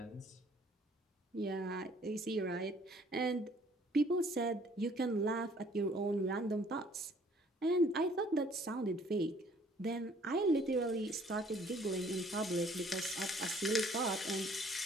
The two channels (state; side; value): normal; both; correlation 0.58